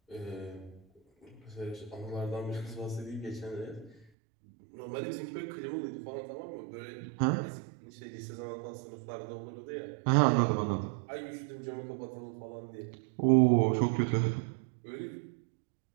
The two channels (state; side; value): drops out; left; at 4.0 s